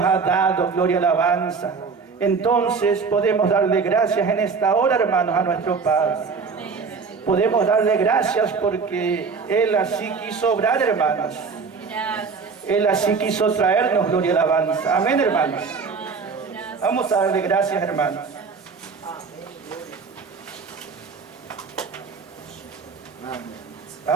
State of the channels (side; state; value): left; quieter; 5.1 dB